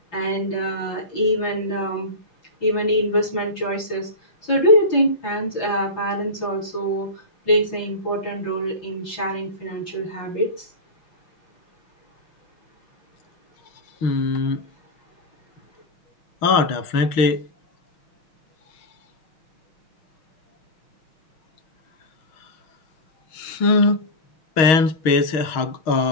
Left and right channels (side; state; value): right; late; 6.3 ms